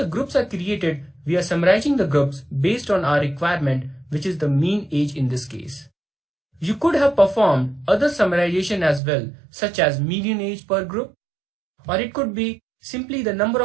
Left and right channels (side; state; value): left; drops out; at 9.0 s